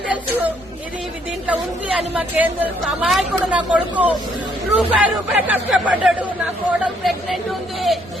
తెలుసు ఇది దీంట్లో ఉంది అని మాకేం తెలుసు అమాయకుడు నా కొడుకు రూపాయి కష్టపడ్డాడు నా కోడలు ప్రెగ్నెంట్ ఉంది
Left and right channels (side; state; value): both; normal; correlation 0.68